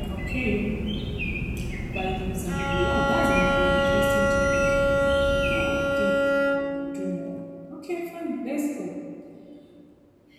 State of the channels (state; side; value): identical; both; correlation 1.00